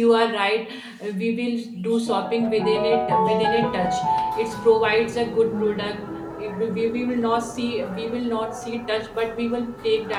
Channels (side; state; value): both; identical; correlation 1.00